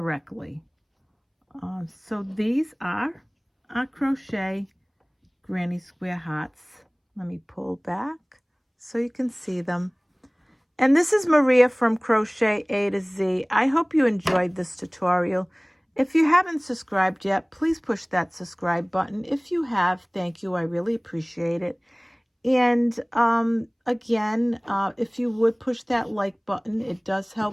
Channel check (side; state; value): both; identical; correlation 1.00